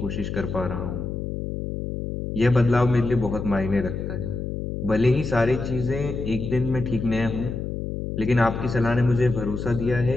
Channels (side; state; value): left; noise; hum, 5 dB below the sound